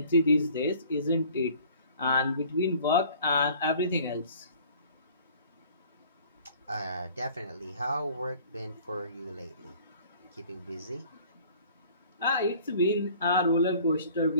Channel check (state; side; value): inverted; both; correlation -0.52